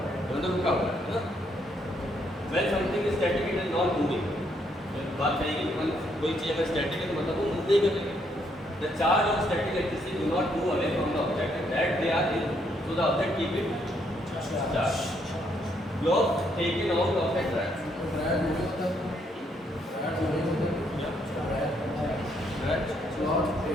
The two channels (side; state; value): both; normal; correlation 0.72